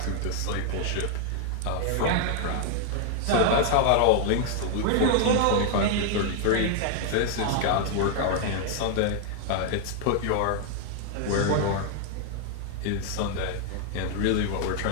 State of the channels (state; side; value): different; both; correlation 0.00